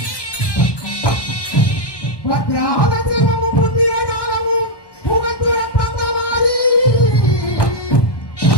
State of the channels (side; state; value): right; late; 1.1 ms